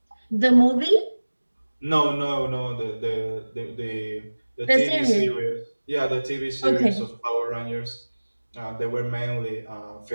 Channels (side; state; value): both; inverted; correlation -1.00